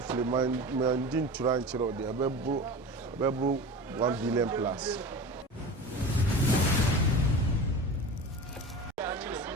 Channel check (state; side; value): normal; both; correlation 0.32